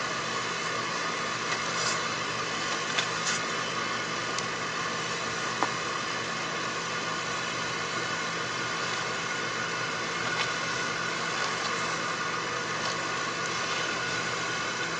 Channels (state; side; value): identical; both; correlation 1.00